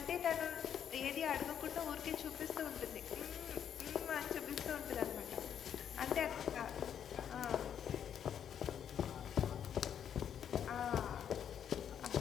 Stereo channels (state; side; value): quieter; right; 8.8 dB